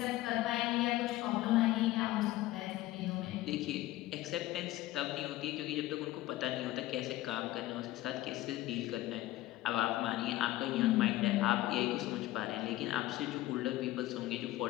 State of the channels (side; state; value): right; quieter; 16.3 dB